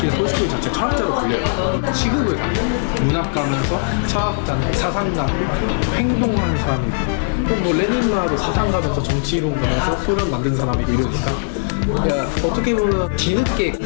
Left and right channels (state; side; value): silent; right; 66 dB below the other